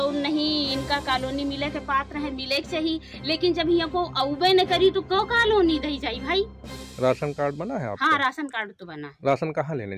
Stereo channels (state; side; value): identical; both; correlation 1.00